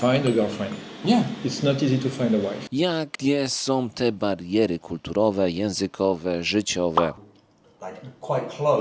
a girlfriend. Yeah. It's not easy to find a wife. Jakie są te bariery kulturowe, językowe, życiowe? Like quite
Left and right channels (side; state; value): both; identical; correlation 1.00